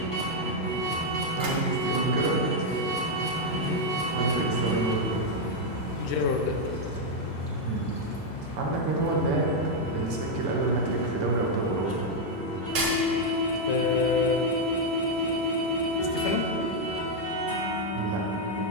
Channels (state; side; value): normal; both; correlation 0.00